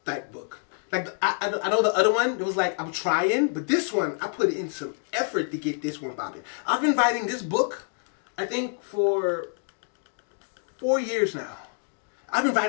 type book. Like, I know the other one, it was like, I'm trying, but this one, I put in some effort to get this one popping. I've been writing this book, I think, for 4 years now. I've been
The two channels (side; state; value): right; silent; 60 dB below the other